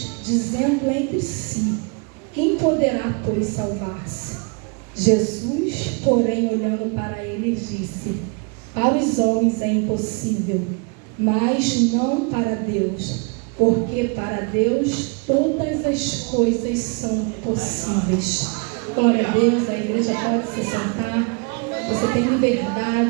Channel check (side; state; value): left; quieter; 33.7 dB